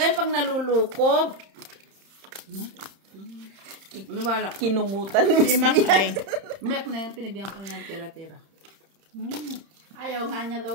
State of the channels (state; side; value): late; left; 31 ms